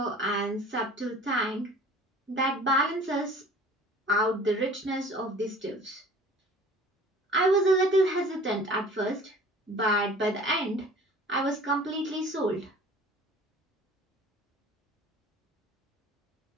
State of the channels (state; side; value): normal; both; correlation 0.47